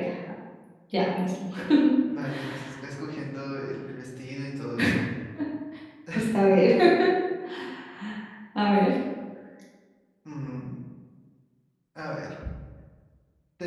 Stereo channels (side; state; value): both; identical; correlation 1.00